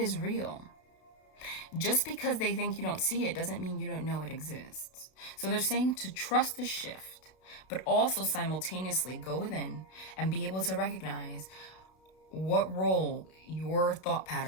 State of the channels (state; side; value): late; right; 32 ms